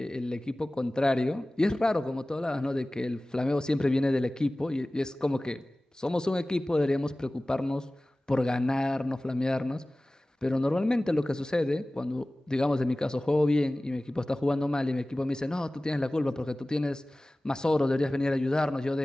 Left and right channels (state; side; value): normal; both; correlation 0.98